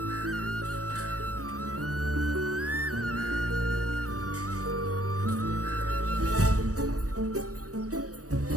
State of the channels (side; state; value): left; late; 0.66 ms